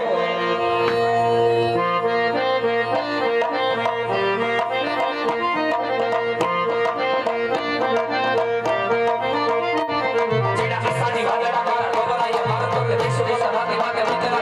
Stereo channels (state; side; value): identical; both; correlation 1.00